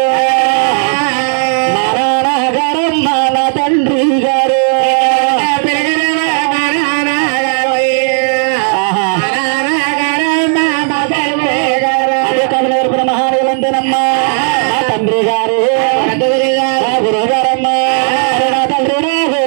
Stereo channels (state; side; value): silent; left; 58 dB below the other